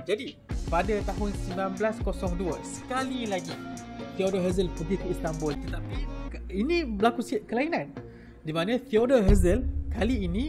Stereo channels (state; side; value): identical; both; correlation 1.00